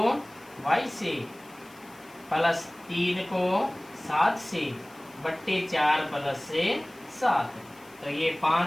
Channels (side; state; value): left; noise; hiss, 25 dB below the sound